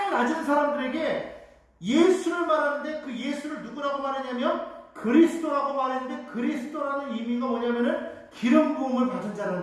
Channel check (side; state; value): both; identical; correlation 1.00